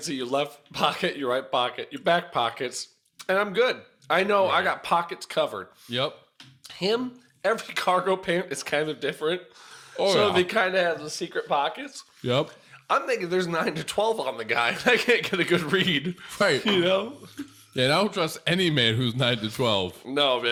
see your left pocket, your right pocket, your back pockets, and I'm good. I know I got pockets covered. Yep. Him, every cargo pant is kind of different. They kind of have the secret pockets. Yep. I'm thinking there's 9 to 12 on the guy, and I can't get a good read. Right. You know? Yeah, and I don't trust any man who's 9 to 12. No,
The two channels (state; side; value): identical; both; correlation 1.00